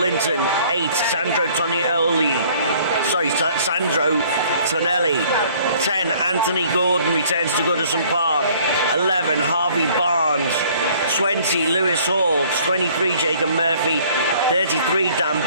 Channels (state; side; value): inverted; both; correlation -0.56